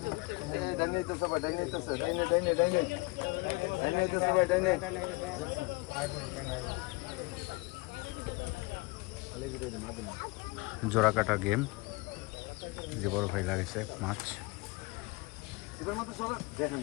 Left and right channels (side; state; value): right; quieter; 25.3 dB